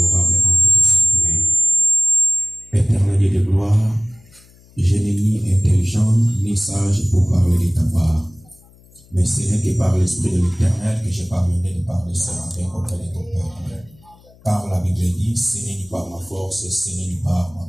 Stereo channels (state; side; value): noise; left; hum, 27 dB below the sound